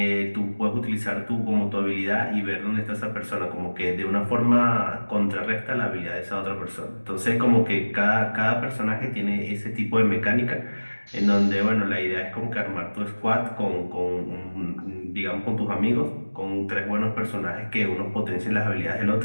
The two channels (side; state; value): both; inverted; correlation -1.00